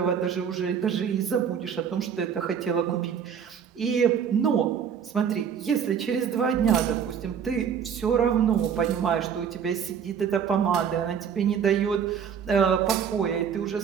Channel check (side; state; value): left; quieter; 7.6 dB